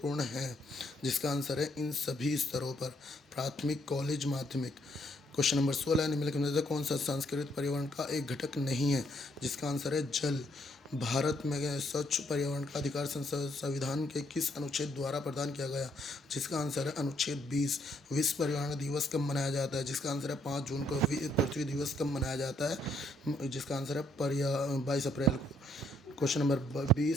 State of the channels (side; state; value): both; normal; correlation 0.71